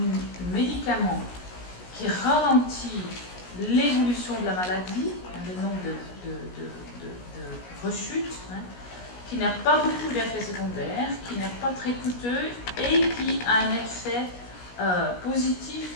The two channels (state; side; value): late; right; 17 ms